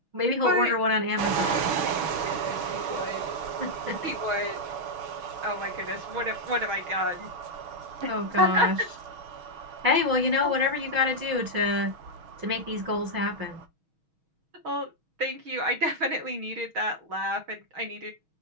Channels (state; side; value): late; left; 6.3 ms